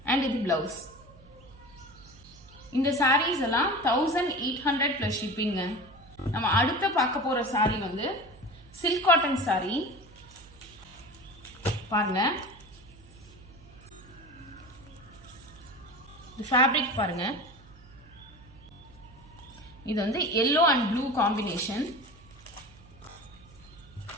அண்ட் இது பிளவுஸ். இந்த சாரீஸ் எல்லாம் 1800 பிளஸ் ஷிப்பிங்க. நம்ம அடுத்த பார்க்க போற சாரி வந்து சில்க் காட்டன் சாரி. பாருங்க, ஃபேப்ரிக் பாருங்க, இது வந்து yellow and blue காம்பினேஷன்.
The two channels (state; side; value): noise; right; hum, 23 dB below the sound